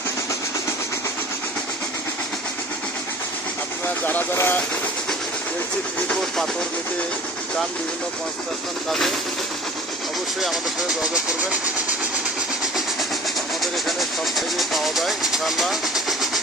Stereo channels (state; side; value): normal; both; correlation 0.44